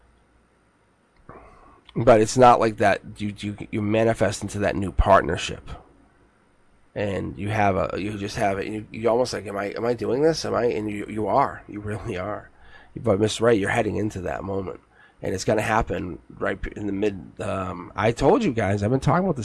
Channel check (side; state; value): both; identical; correlation 1.00